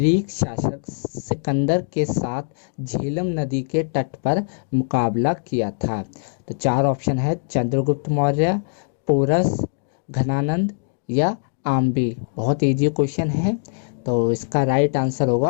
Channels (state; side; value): silent; right; digital silence